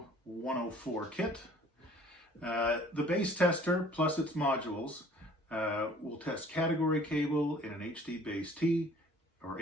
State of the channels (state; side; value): normal; both; correlation 0.53